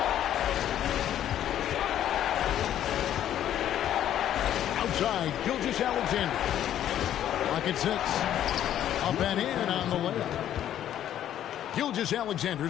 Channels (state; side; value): quieter; right; 11.2 dB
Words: Outside, Gilgeous-Alexander. Lock at 6. Up and in on the layup.